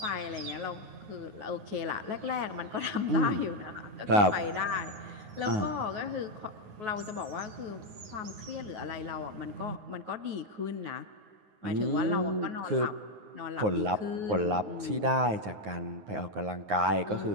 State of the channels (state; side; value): late; left; 9.6 ms